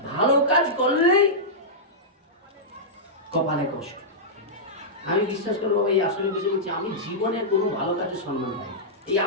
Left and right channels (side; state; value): both; normal; correlation -0.12